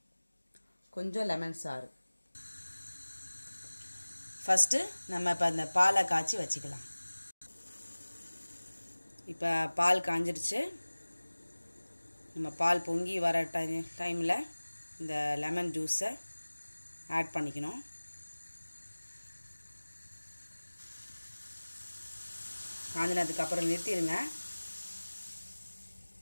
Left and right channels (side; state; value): both; inverted; correlation -1.00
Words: கொஞ்சம் லெமன் சாறு. ஃபஸ்ட்டு நம்ம இப்போ அந்த பாலை காய்ச்சி வச்சுக்கலாம். இப்போ பால் காஞ்சிருச்சு. நம்ம பால் பொங்கி வர டைமில் இந்த லெமன் ஜூஸை ஆட் பண்ணிக்கணும். காஞ்சினதுக்கப்புறம் நிறுத்திடுங்க.